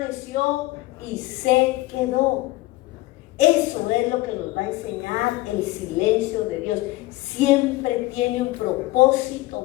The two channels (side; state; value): right; quieter; 19.0 dB